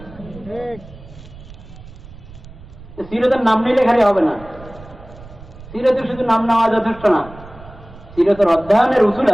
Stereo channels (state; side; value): noise; right; rumble, 18 dB below the sound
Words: সিরতের নাম নিলে খালি হবে না, সিরতের শুধু নাম নেওয়া যথেষ্ট না, সিরতের অধ্যয়নের উসুল